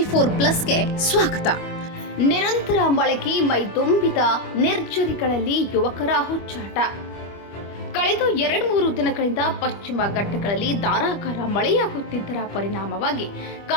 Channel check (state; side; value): late; right; 25 ms